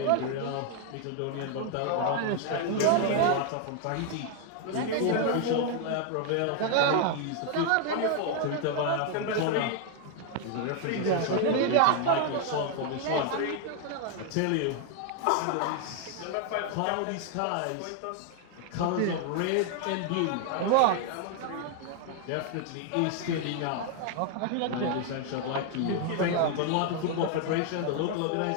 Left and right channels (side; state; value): both; different; correlation 0.00